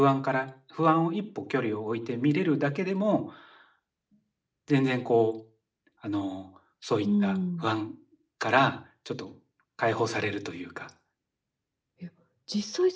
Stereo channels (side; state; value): both; identical; correlation 1.00